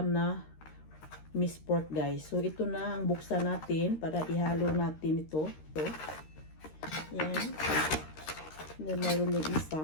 na minced pork guys. So ito na ang buksan natin para ihalo natin ito. So, yan. Then mayroon na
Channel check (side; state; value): right; late; 13 ms